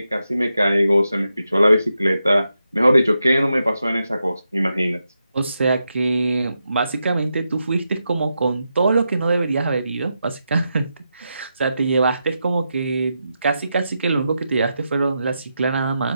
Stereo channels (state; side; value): inverted; both; correlation -0.87